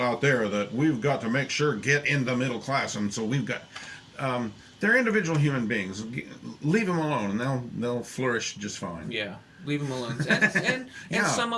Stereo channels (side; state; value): both; identical; correlation 1.00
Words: out there that we've got to make sure get in the middle class, and so we've got they're individual human beings. Leave them alone, and they'll flourish just fine. Yeah, leave them alone, and some